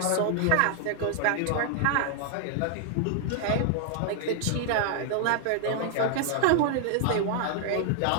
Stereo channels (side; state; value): both; different; correlation 0.00